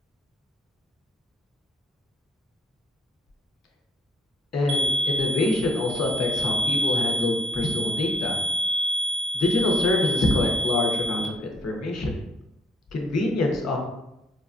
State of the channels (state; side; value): normal; both; correlation 0.64